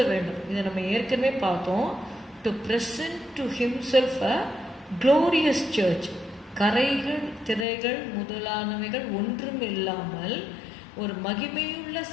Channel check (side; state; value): right; drops out; at 7.7 s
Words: வேண்டும். இதை நம்ம ஏற்கனவே பார்த்தோம். To present to himself a glorious church. கரைகள் திரைகள் முதலானவைகள் ஒன்றும் இல்லாமல் ஒரு மகிமையுள்ள